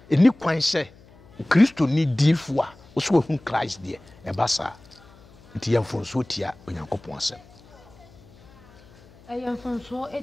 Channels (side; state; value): left; noise; hum, 25 dB below the sound